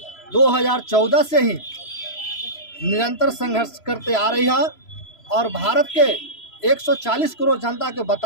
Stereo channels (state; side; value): late; right; 3.0 ms